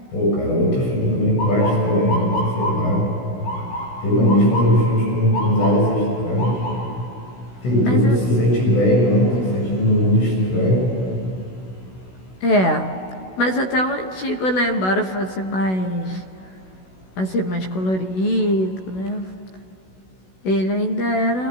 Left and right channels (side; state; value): right; late; 16 ms